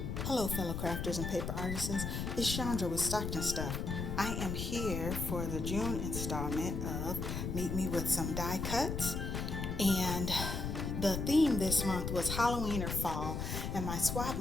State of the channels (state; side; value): noise; left; rumble, 3 dB below the sound